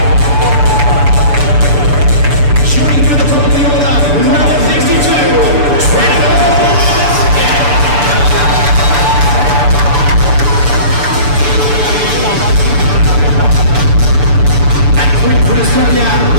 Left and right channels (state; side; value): late; left; 6.9 ms